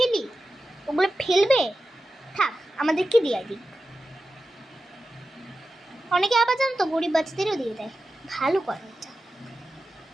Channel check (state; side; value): normal; both; correlation 0.92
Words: ওগুলো ফেলবে, থাক আমাদেরকে দিয়ে দিই। অনেকে আবার জানো তো গরিব বাচ্চাদেরও দিয়ে দেয়, ভালো করে এটা।